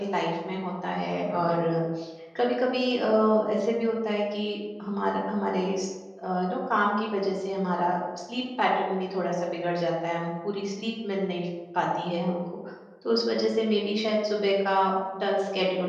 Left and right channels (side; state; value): both; identical; correlation 1.00